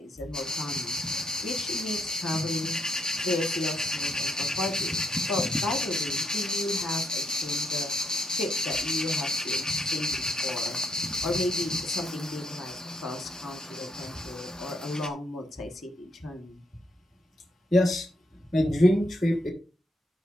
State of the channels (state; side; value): normal; both; correlation 0.75